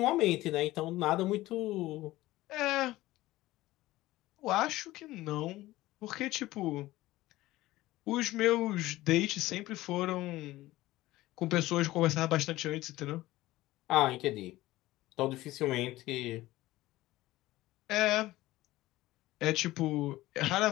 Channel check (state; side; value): quieter; right; 17.2 dB